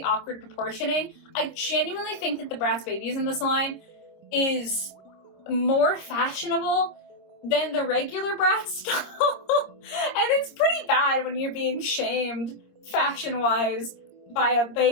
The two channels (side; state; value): right; late; 26 ms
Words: awkward proportioning, I genuinely think that the Bratz babies in this line is more fashionable than the regular Bratz doll. And it's pretty bad when you're being shamed fashion-wise by a